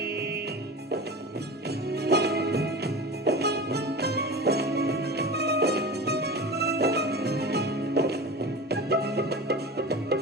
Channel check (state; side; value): normal; both; correlation 0.32